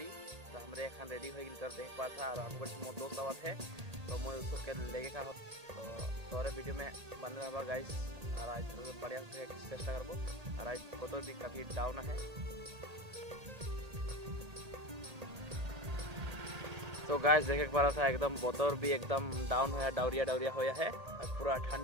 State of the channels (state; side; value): late; left; 1.8 ms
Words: तो हमारे खान रेडी हो गई कर देख पा था और हमको मोर दोस्त आवत है तो मैं उसको के लेके का तो तोरे वीडियो में बन रहा गाइस। और आज बढ़िया से चेष्टा करबो और आज फोटो भी काफी डाउन है। तो गाइस देखे पा रहा था एकदम बोतर भी एकदम डाउन होया डाउरिया होया है और पूरा